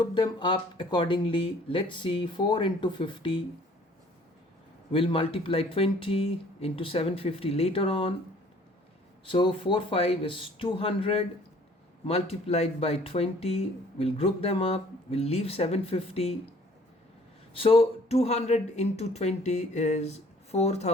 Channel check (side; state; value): both; normal; correlation 0.56